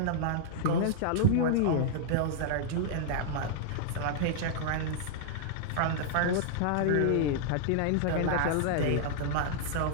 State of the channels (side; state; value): both; different; correlation -0.01